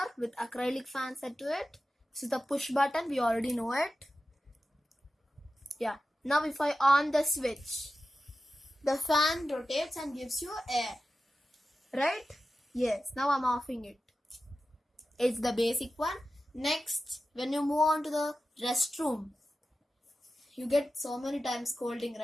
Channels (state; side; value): normal; both; correlation 0.93